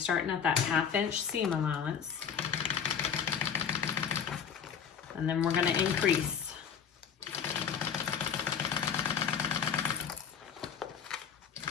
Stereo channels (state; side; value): quieter; right; 7.4 dB